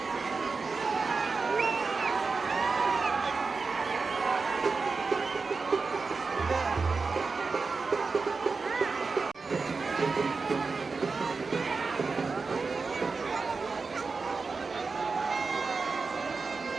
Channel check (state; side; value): quieter; left; 4.4 dB